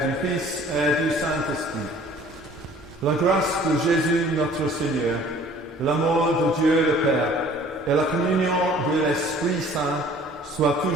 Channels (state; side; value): normal; both; correlation 0.52